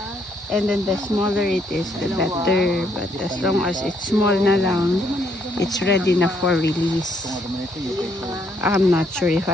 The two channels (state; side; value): normal; both; correlation 0.71